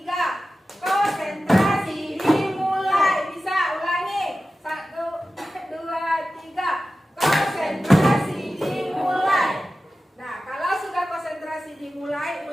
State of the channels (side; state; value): both; normal; correlation 0.94